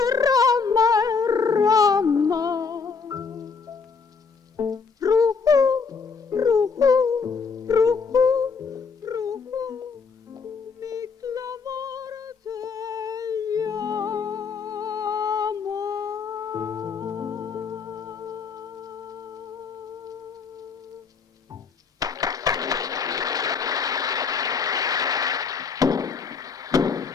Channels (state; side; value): quieter; right; 5.3 dB